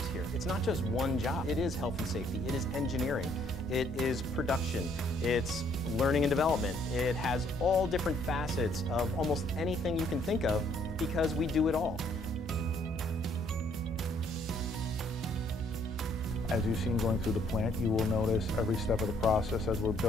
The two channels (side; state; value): both; normal; correlation 0.66